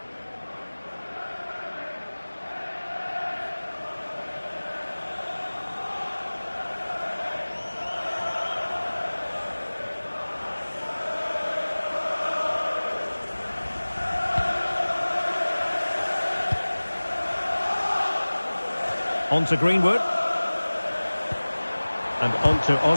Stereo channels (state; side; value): inverted; both; correlation -1.00